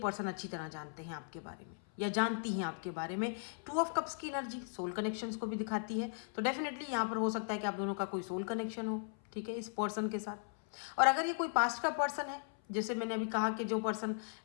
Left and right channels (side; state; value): right; silent; 53 dB below the other